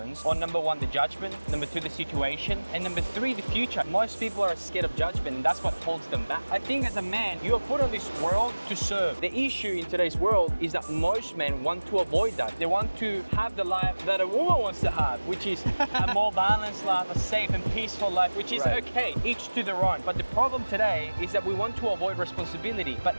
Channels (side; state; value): both; inverted; correlation -1.00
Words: on number one, the judgment, number two, the situation, and number three, the future. Most people are scared of judgment, and that's what holds them back. I think as a man, you are put on this world to serve. The issue in today's world is that most men want to avoid that. They want to have the life that a woman wants to have, which is a more balanced life, a safe and peaceful life, which is okay, each to their own. But the problem today is that we want to avoid responsibility. But